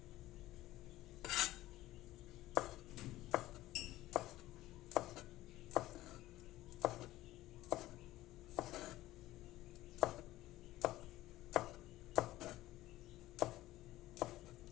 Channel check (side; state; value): right; quieter; 16.2 dB